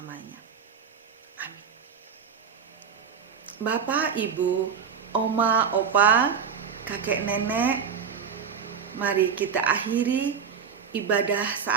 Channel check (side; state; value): left; quieter; 6.8 dB